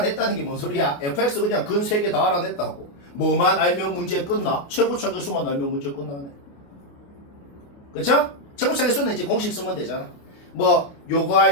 게 뭔 소리야? fx 그냥 근 3개 다 알아냈다고. 뭐만 알면 문제 끝나? 최고차의 수만 알면 문제 끝나네. 그쵸? 최고차의 수는 이제 공식 쓰면 되잖아. 뭐 요거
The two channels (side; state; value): right; late; 28 ms